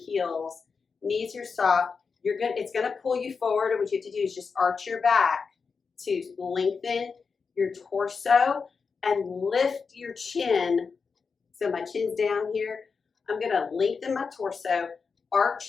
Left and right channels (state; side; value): quieter; right; 5.2 dB